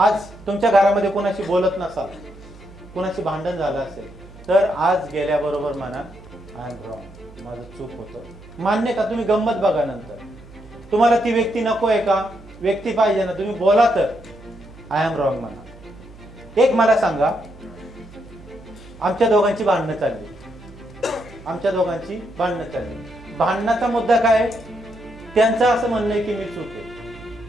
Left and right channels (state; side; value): noise; right; hum, 20 dB below the sound